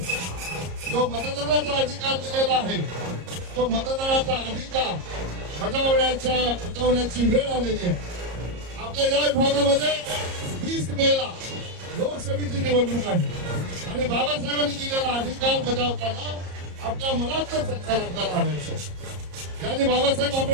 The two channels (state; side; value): late; left; 34 ms